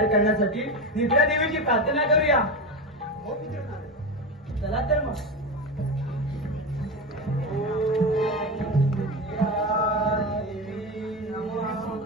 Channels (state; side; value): normal; both; correlation 0.20